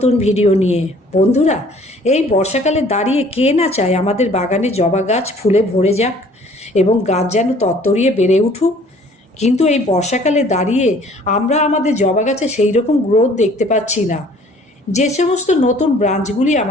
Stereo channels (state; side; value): normal; both; correlation 0.55